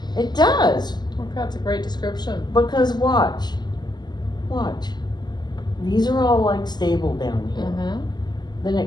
It does, Okay, that's a great description. because watch. These are all like stable down here. Mm-hmm. Then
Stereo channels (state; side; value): late; right; 0.21 ms